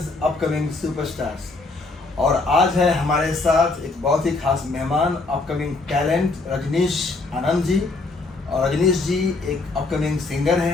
अपकमिंग सुपरस्टार्स। और आज है हमारे साथ एक बहुत ही खास मेहमान, अपकमिंग टैलेंट रजनीश आनंद जी। और रजनीश जी एक अपकमिंग सिंगर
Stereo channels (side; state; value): right; quieter; 3.5 dB